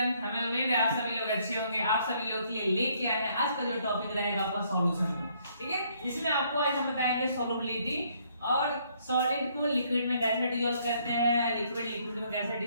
हमें उम्मीद है आप सभी लोग अच्छे होंगे। आप सभी लोग के लिए लेके आए हैं आज का जो टॉपिक रहेगा आपका सॉल्यूशन। ठीक है, इसमें आपको आज हम बताएंगे सोलबिलिटी और सॉलिड को लिक्विड में कैसे डिसॉल्व करते हैं, लिक्विड लिक्विड में कैसे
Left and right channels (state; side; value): inverted; both; correlation -0.67